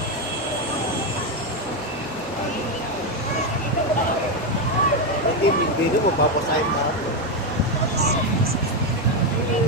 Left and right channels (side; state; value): left; noise; hum, 24 dB below the sound